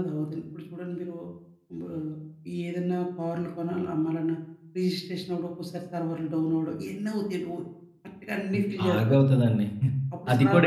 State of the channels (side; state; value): both; identical; correlation 1.00